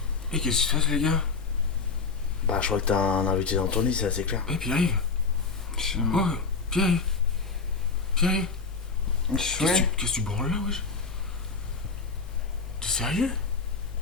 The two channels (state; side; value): quieter; right; 4.7 dB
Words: Et qu'est-ce qui se passe, les gars? Bah, je crois que t'as un invité dans ton lit, c'est assez clair. Eh, Pierre-Yves. Oh, Pierre-Yves. Pierre-Yves. Qu'est-ce que tu branles là, wesh? T'es sérieux?